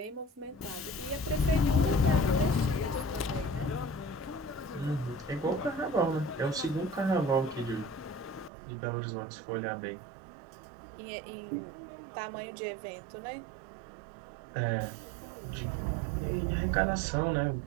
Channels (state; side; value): drops out; left; at 8.5 s